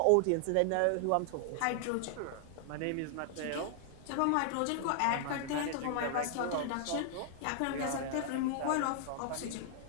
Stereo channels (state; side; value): different; both; correlation 0.00